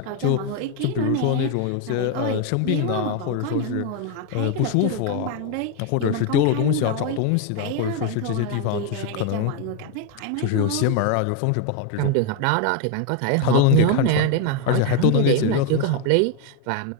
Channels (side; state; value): both; different; correlation 0.01